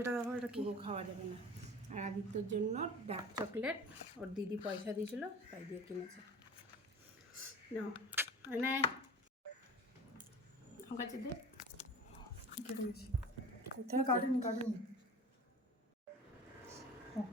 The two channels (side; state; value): both; normal; correlation 0.39